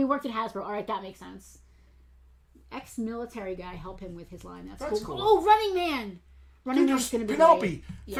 worked at Hasbro. All right, that makes sense. Ex-military guy, help him with his line. That's cool. Oh, Running Man. Running Man's going to be Penelope. great. Yeah.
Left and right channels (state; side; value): identical; both; correlation 1.00